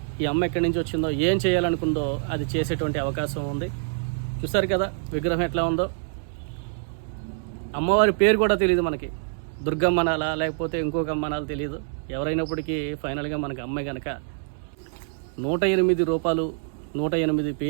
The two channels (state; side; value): silent; left; digital silence